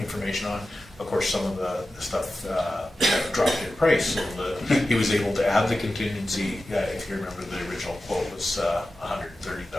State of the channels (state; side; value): normal; both; correlation 0.94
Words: information on. Of course, some of the stuff dropped in price, so he was able to add the contingency. If you remember, the original quote was